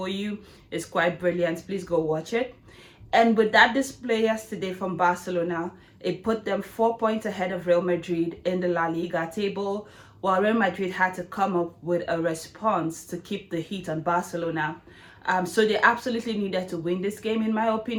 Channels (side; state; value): both; identical; correlation 1.00